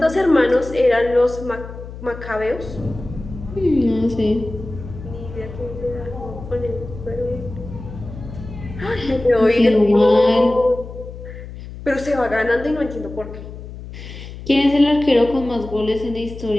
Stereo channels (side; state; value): left; noise; hum, 12 dB below the sound